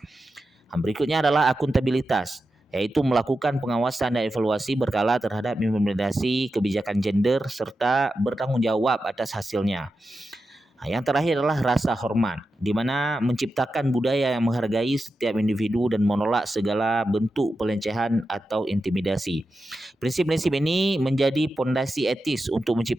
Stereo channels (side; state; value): both; normal; correlation 0.90